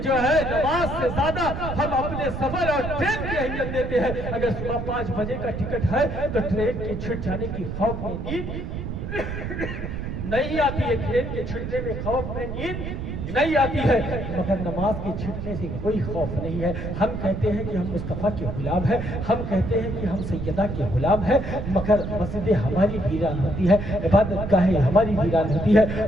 جو ہے نماز سے زیادہ ہم اپنے سفر اور ٹرین کی اہمیت دیتے ہیں۔ اگر صبح 5 بجے کا ٹکٹ ہے تو ٹرین کے چھٹ جانے کی خوف میں نیند نہیں آتی ہے، ٹرین کے چھٹنے میں خوف میں نیند نہیں آتی ہے، مگر نماز کے چھٹنے سے کوئی خوف نہیں ہے۔ ہم کہتے ہیں کہ ہم مصطفیٰ کے غلام ہیں، ہم کہتے ہیں کہ ہم سیدہ کے غلام ہیں، مگر مسجدیں ہماری ویران ہوتی ہے، عبادت گاہیں ہماری ویران ہوتی ہے۔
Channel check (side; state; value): right; noise; rumble, 5 dB below the sound